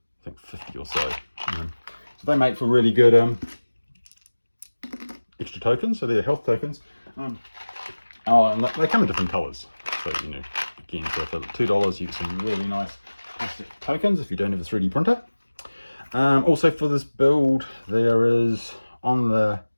think, 50 or so. So they make for really good extra tokens. So they're health tokens. And they come in different colors. So, again, so for $2 you get some really nice plastic tokens if you don't have a 3D printer. Also for this build, there is on the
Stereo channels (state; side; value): inverted; both; correlation -1.00